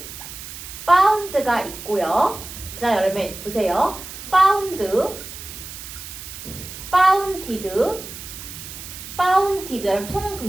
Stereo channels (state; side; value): noise; right; hiss, 12 dB below the sound